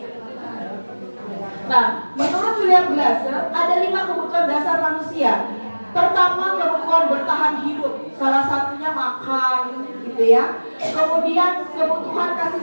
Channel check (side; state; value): both; inverted; correlation -1.00